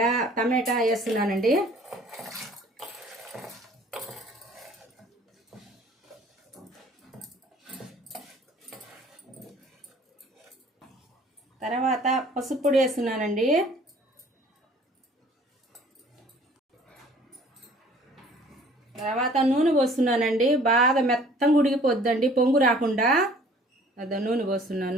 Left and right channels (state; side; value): normal; both; correlation 0.53